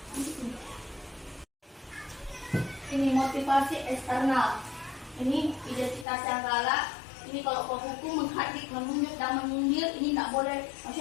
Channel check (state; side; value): drops out; right; at 6.1 s